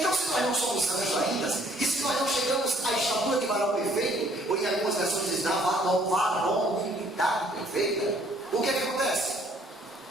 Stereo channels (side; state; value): both; normal; correlation 0.61